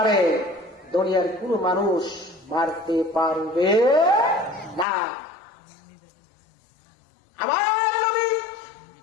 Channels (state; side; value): drops out; right; at 4.9 s